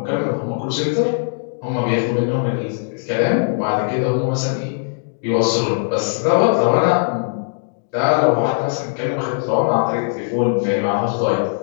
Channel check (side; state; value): right; silent; digital silence